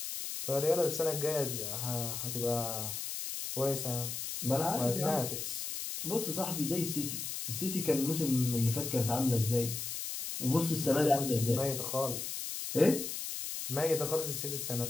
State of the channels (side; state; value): left; noise; hiss, 5 dB below the sound